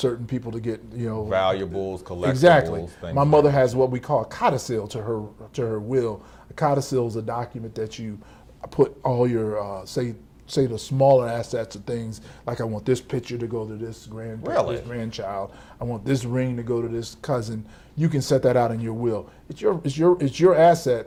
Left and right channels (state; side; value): identical; both; correlation 1.00